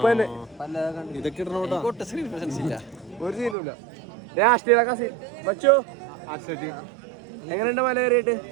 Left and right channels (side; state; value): left; drops out; at 3.6 s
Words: തന്നെ ഇതൊക്കെ ഇടണോട്ടാ. സ്ക്രീൻ പ്രസൻസ് ഇല്ല. ഒരു സീനുമില്ല. രാഷ്ട്രീയ സീൻ വച്ചോ. എങ്ങനെയുണ്ട് മല കയറിയിട്ട്?